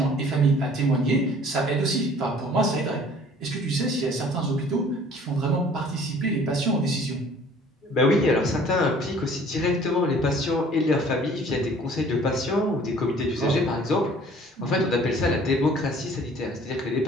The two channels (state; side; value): normal; both; correlation 0.52